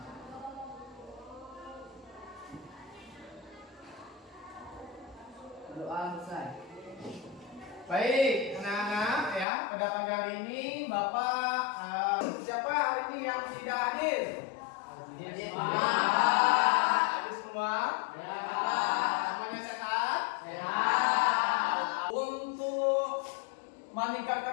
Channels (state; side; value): drops out; right; at 9.5 s